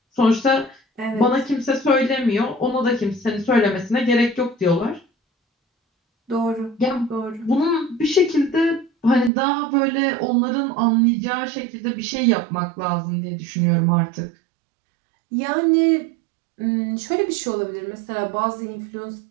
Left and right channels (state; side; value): drops out; left; at 9.3 s